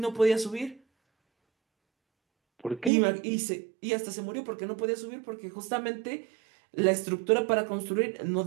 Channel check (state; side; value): drops out; left; at 2.9 s